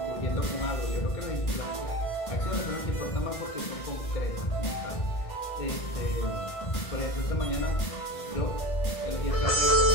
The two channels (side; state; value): right; late; 1.6 ms